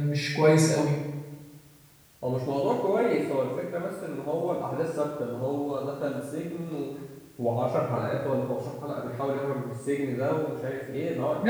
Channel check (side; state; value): both; identical; correlation 1.00